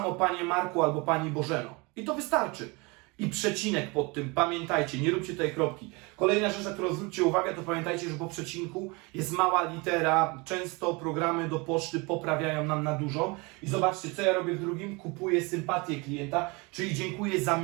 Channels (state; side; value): quieter; left; 27.4 dB